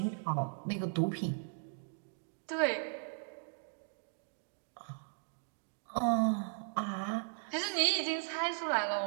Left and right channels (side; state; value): left; silent; digital silence